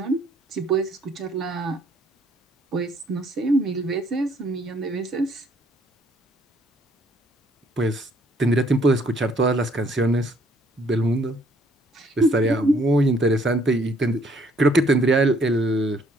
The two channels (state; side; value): normal; both; correlation 0.65